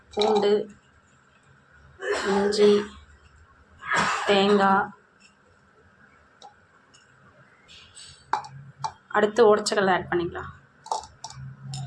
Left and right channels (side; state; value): both; identical; correlation 1.00